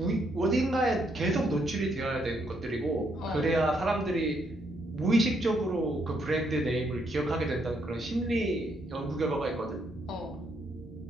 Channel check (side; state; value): both; normal; correlation 0.74